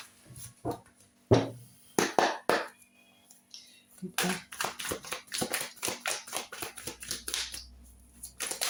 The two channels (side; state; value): both; identical; correlation 1.00